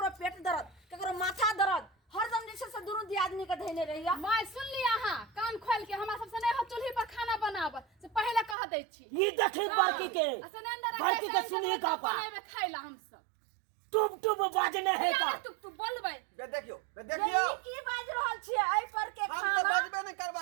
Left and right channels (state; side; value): drops out; left; at 8.6 s